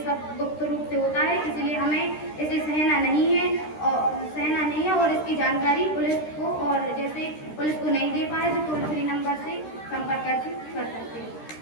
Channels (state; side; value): late; right; 13 ms